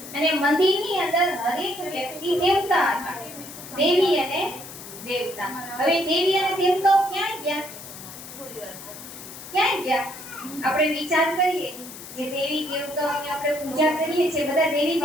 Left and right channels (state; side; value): noise; left; hiss, 14 dB below the sound